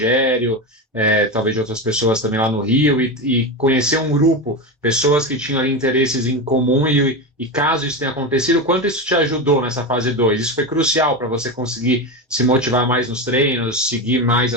talvez de outras pessoas também lá no Rio, e conhecer um grupo, pessoas que tinham ali interesses em comum, e caso isso tenha acontecido, quanto isso te ajudou nessa fase 2? Isso foi crucial para você conseguir se motivar mais nos treinos, seguir mais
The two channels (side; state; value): both; normal; correlation 0.18